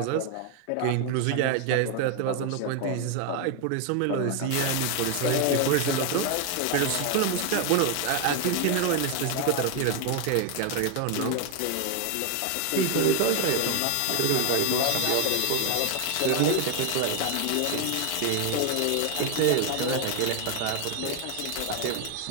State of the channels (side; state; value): both; different; correlation 0.01